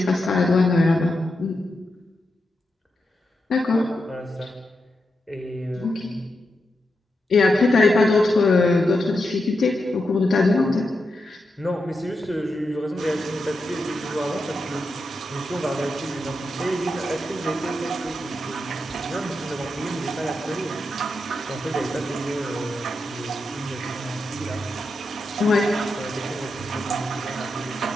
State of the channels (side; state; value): both; normal; correlation 0.86